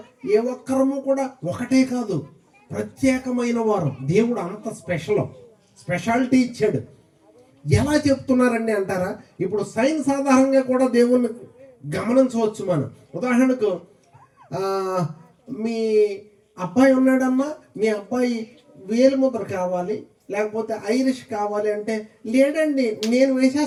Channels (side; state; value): both; identical; correlation 1.00